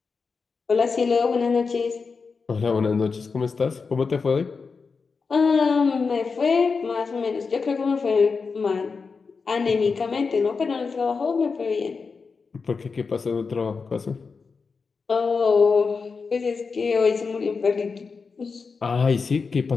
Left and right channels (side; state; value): right; quieter; 4.9 dB